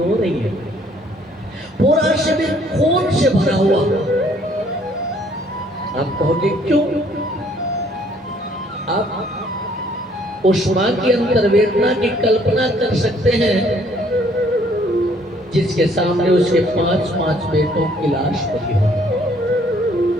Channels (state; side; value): normal; both; correlation 0.62